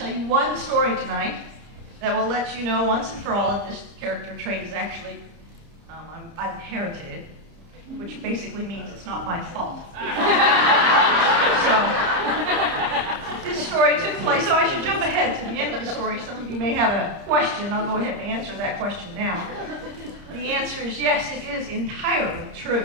you one story tonight that will let you know once and for all that this character trait is actually, I've inherited it, which basically means it's not my fault. So, this story took place, so I should jump ahead to the end of the story. Some of you may have a question. I'll go ahead and answer that question now. The answer is yes, it is entirely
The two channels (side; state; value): left; late; 30 ms